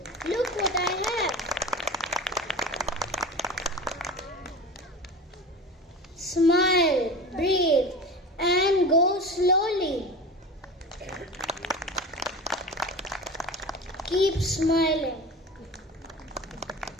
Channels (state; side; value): normal; both; correlation 0.33